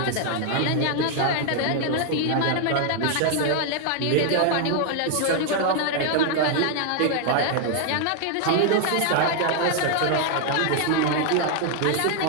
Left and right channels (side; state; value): both; different; correlation 0.00